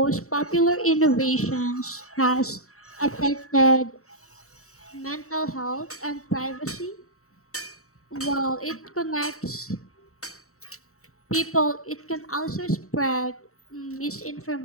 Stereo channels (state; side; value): late; right; 0.64 ms